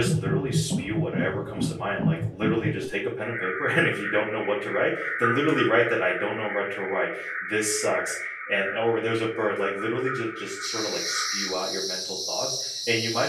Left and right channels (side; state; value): both; identical; correlation 1.00